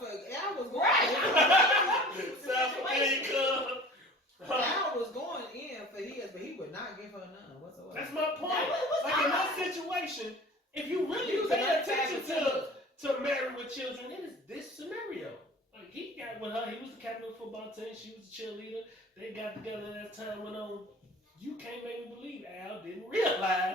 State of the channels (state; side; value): normal; both; correlation 0.43